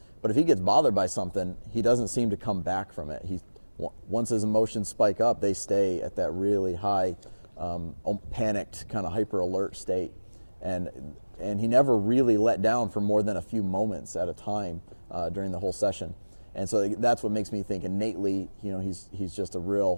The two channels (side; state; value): both; inverted; correlation -1.00